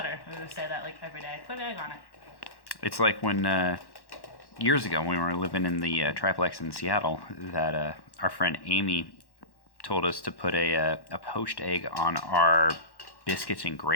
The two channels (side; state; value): right; late; 1.1 ms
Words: And we would say that like every day. Put an egg on it. It's like when years ago when we were living in the triplex in Seattle, that our friend Amy told us to put a poached egg on our biscuits and